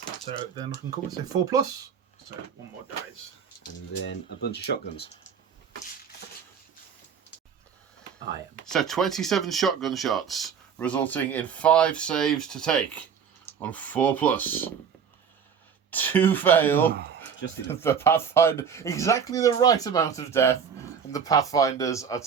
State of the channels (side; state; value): left; quieter; 7.2 dB